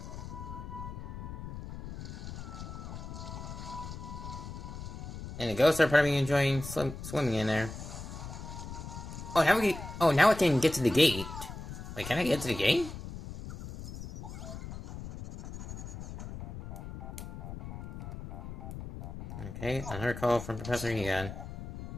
And the ghosts are probably enjoying swimming in there. Oh, now I can get to the gate. Wait, can I get to the gate? Okay, another call from Professor Egon.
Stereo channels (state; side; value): noise; left; rumble, 9 dB below the sound